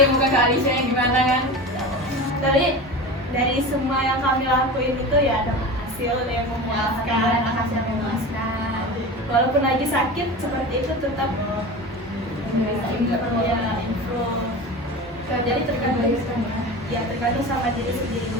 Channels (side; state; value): both; normal; correlation 0.30